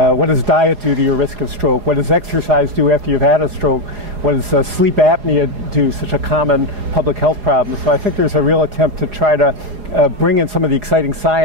does diet do to your risk of stroke? What does exercise do after you've had a stroke? What does sleep apnea do, such a common public health problem? So I think there's a real attempt to try to bring in some of the exciting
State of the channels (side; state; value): left; late; 4.8 ms